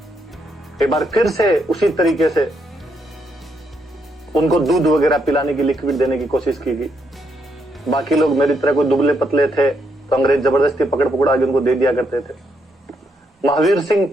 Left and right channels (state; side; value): normal; both; correlation 0.77